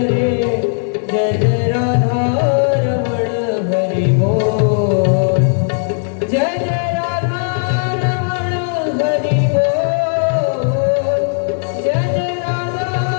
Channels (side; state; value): right; silent; digital silence